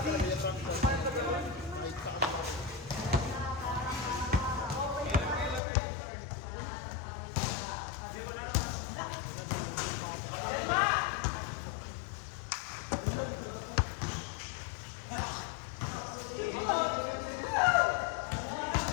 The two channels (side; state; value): right; drops out; at 5.6 s